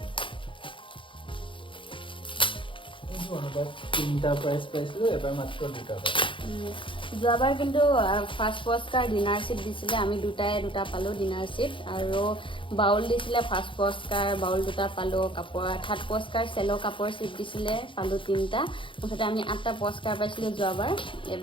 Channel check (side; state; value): right; late; 0.25 ms